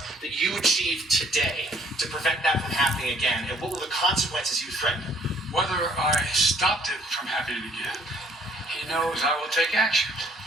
that you achieved today to prevent that from happening again? And what were the consequences you threatened? Whether I stopped it from happening again, he knows I will take action,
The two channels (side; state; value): both; normal; correlation 0.61